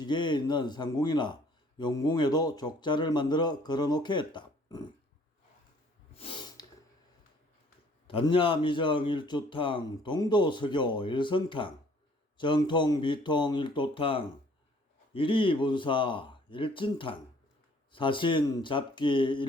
있는 상궁이나 용궁에도 족자를 만들어 걸어놓게 했다. 단야미정 일주탕, 동도서교 일성탕, 정통 비통 일도탕, 일이분사 일진탕, 사신 잡기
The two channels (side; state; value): both; normal; correlation 0.58